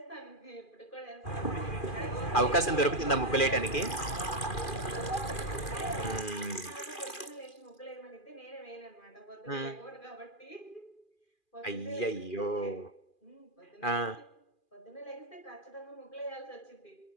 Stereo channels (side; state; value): right; late; 2.4 ms